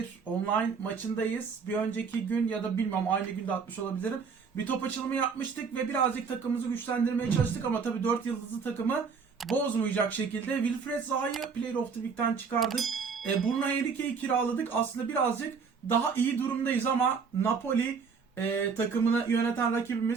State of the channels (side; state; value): left; quieter; 5.6 dB